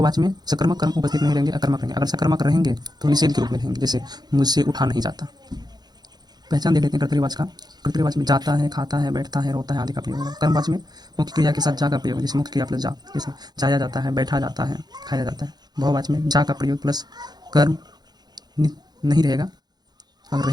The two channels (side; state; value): left; late; 0.20 ms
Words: में सकर्मक कर्म उपस्थित नहीं रहेंगे, अकर्मक रहेंगे। अगर सकर्मक रहेंगे तो निषेध के रूप में रहेंगे, जैसे मुझसे उठा नहीं जाता। पहचान देख लेते हैं कर्तृवाच्य का। कर्तृवाच्य में जाता है, खाता है, बैठता है, रोता है आदि का प्रयोग होगा। कर्मवाच्य में मुख्य क्रिया के साथ जा का प्रयोग, जैसे मुख्य क्रिया प्लस जा, जैसे जाया जाता है, बैठा जाता है, खाया जाता है। भाववाच्य में जा का प्रयोग प्लस कर्म नहीं रहेगा, अगर